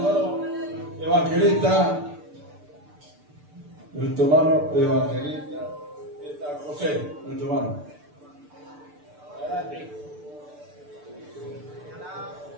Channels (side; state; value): left; late; 6.8 ms